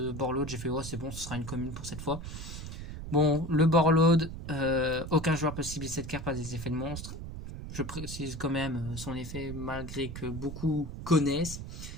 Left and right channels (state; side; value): noise; right; rumble, 9 dB below the sound